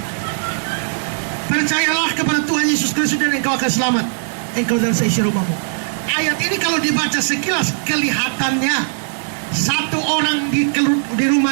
Percayalah kepada Tuhan Yesus Kristus dan engkau akan selamat, engkau dan seisi rumahmu. Ayat ini kalau dibaca sekilas kelihatannya satu orang di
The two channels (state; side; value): silent; left; digital silence